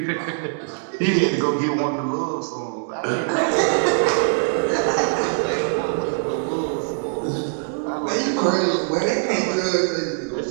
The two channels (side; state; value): left; silent; 64 dB below the other